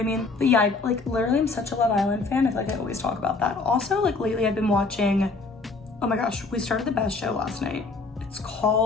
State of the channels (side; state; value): right; quieter; 3.9 dB